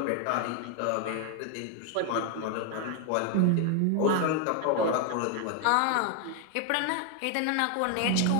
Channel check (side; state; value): both; different; correlation 0.01